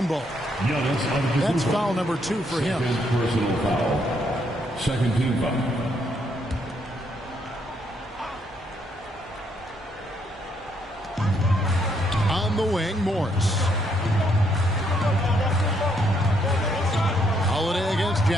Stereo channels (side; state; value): both; normal; correlation 0.73